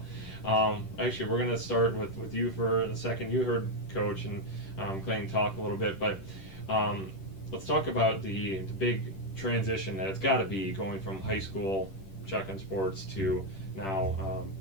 actually, we're going to start with you for a second. You heard Coach and Clayton talk a little bit, but let's talk about the big transition that it's got to be going from high school shotgun sports to now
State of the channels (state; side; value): late; right; 10 ms